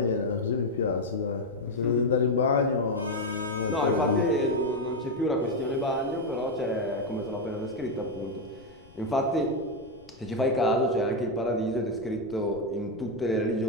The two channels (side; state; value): left; noise; rumble, 25 dB below the sound